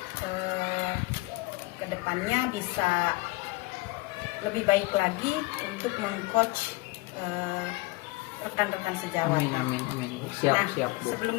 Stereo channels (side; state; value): right; quieter; 23.0 dB